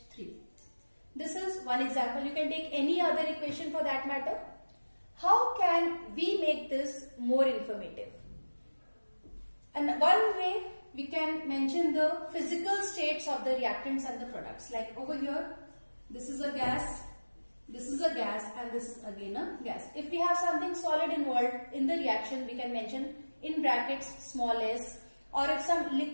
This is one example. You can take any other equation for that matter. How can we make this more informative? And one way we can mention the physical states of the reactants and the products. Like over here, this is a gas, this is a gas, and this is again a gas. If we have something solid involved in the reaction, we can mention in brackets small s, or if some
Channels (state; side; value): inverted; both; correlation -1.00